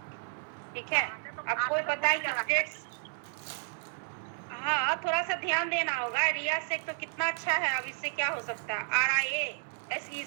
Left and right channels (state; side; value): silent; left; digital silence